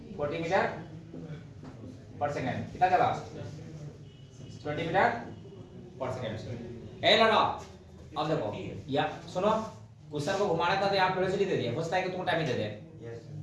40 मीटर पर सेकंड, कितना चला 20 मीटर पर सेकंड। ए लगा अब देखो या सुनो, क्वेश्चन को घुमाना था तो यहाँ वेलोसिटी दे दिया, होता है कि तुम टाइम ही दे दे,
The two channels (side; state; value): both; identical; correlation 1.00